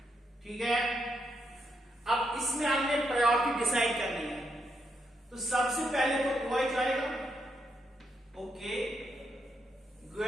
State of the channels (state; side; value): normal; both; correlation 0.80